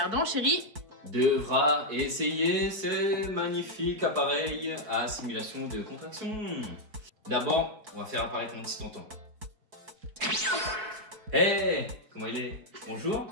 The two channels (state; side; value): late; left; 4.6 ms